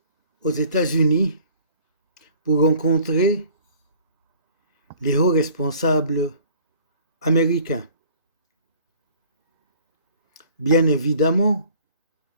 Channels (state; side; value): inverted; both; correlation -0.52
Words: aux États-Unis pour rencontrer les hauts responsables américains. Bien évidemment,